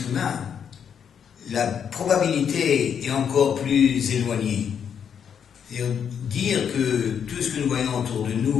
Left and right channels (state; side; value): quieter; right; 7.8 dB